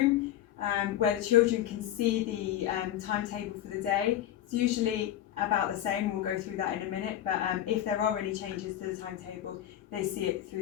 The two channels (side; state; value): right; quieter; 11.9 dB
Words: where the children can see the timetable for the day. It's usually about the same, we'll go through that in a minute, but if there are any changes to the timetable, they see it